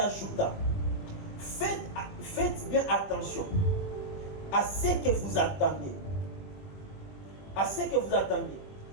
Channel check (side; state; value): right; late; 21 ms